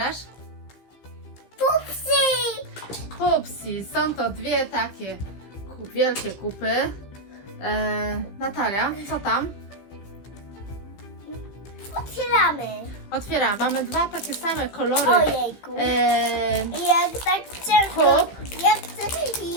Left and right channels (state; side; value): late; right; 15 ms